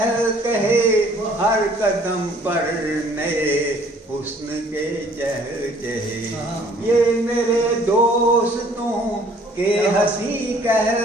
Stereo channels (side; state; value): both; normal; correlation 0.57